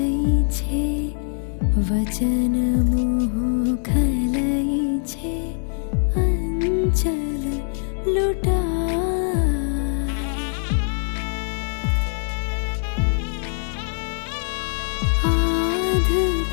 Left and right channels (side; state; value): right; silent; digital silence